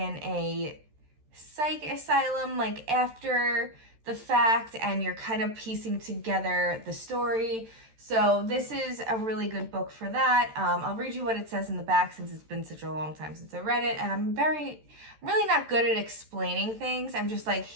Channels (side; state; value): left; late; 13 ms